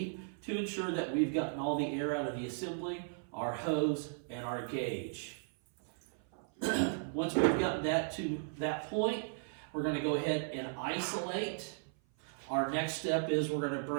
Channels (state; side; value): silent; left; 54 dB below the other